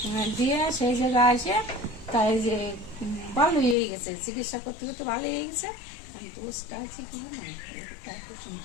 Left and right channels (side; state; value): right; drops out; at 3.8 s